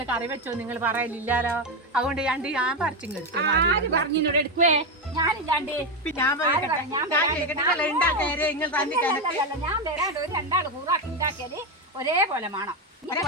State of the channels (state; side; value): normal; both; correlation 0.10